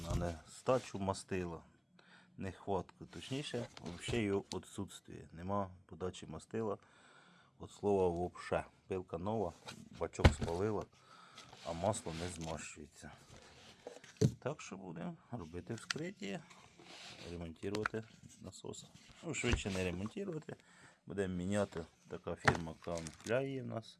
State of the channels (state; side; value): identical; both; correlation 1.00